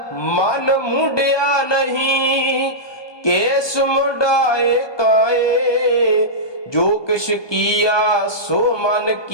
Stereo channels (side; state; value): right; late; 1.2 ms